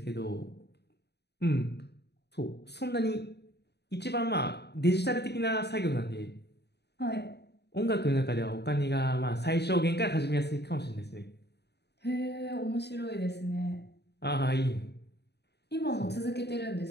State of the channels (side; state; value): right; late; 0.49 ms